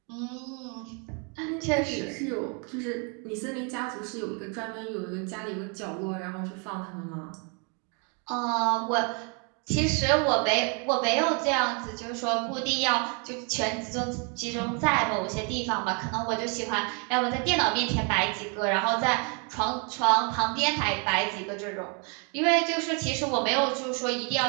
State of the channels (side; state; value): left; quieter; 36.0 dB